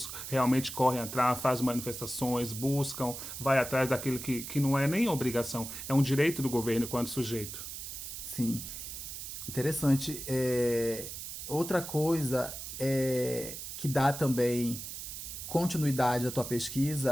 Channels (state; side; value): noise; right; hiss, 8 dB below the sound